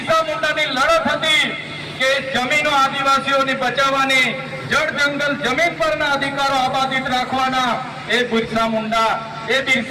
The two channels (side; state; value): both; identical; correlation 1.00